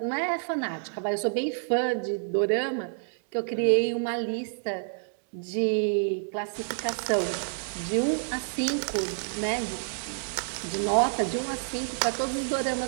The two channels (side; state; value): left; silent; digital silence